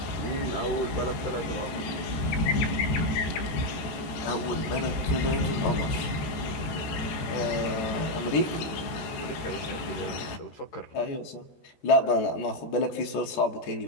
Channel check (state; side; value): late; right; 14 ms